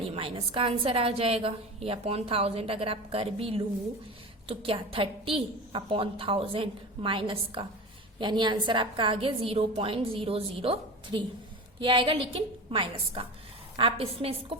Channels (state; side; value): normal; both; correlation 0.29